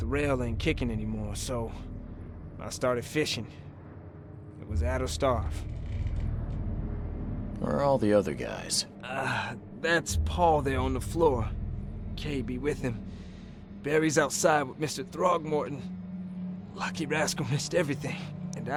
rail ain't kicking anymore, so I started fishing. It was at or starve. Where are all the other guys? That's Paul there on the floor. Kay be with him. Barry's outside with Mr. Throgmorton. Lucky rascal missed everything. And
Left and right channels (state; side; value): identical; both; correlation 1.00